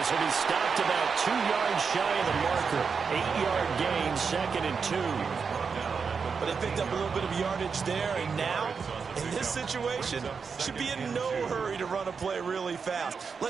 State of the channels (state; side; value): quieter; left; 5.6 dB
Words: will be stopped about 2 yards shy of the marker. 8-yard gain, 2nd and 2. But they picked up a little bit of yardage there, and now, in this situation, should be in no hurry to run a play really fast.